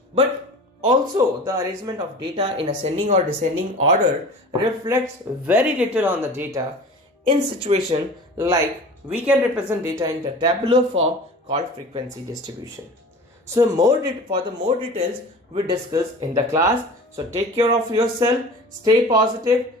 But also the arrangement of data in ascending or descending order reflects very little on the data in situation like we can represent data in the tabular form called frequency distribution. So for the more details we discuss in the class. So take care of yourself, stay positive,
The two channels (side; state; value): both; normal; correlation 0.39